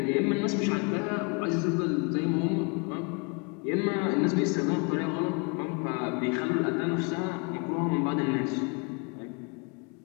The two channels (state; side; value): quieter; right; 32.3 dB